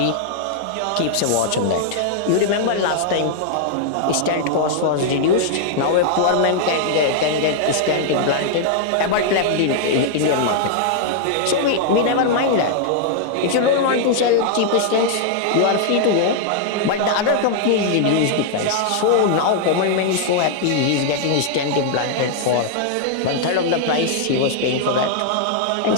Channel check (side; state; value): both; different; correlation -0.01